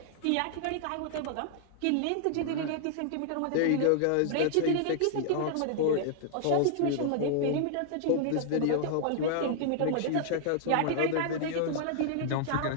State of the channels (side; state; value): both; different; correlation -0.01